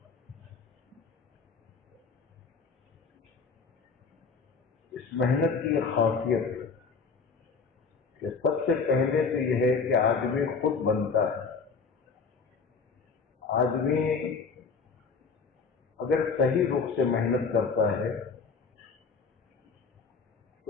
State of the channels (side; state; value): right; quieter; 5.0 dB